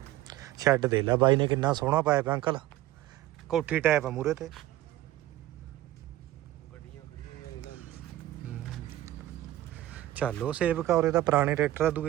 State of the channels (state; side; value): quieter; left; 15.0 dB